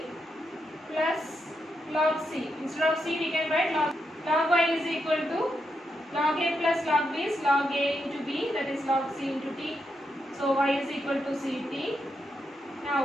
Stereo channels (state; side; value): normal; both; correlation 0.83